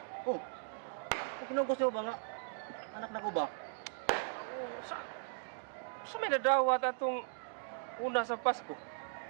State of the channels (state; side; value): silent; left; digital silence